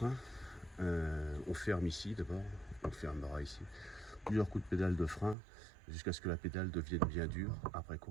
On ferme ici d'abord, on fermera ici, plusieurs coups de pédale de frein jusqu'à ce que la pédale devienne bien dure. Après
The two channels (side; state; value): left; drops out; at 5.4 s